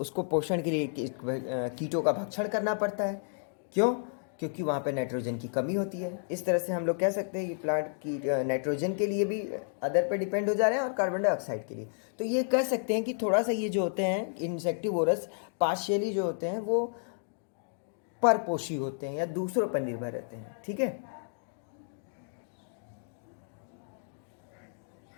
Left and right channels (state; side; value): silent; right; digital silence